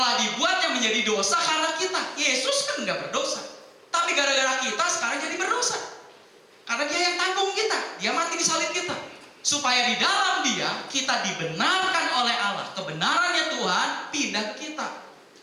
dibuatnya menjadi dosa karena kita. Yesus kan nggak berdosa. Tapi gara-gara kita sekarang jadi berdosa. Karena dia yang tanggung kita, dia mati di salib kita. Supaya di dalam dia, kita dibenarkan oleh Allah. Kebenarannya Tuhan pindah ke kita.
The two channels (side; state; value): both; identical; correlation 1.00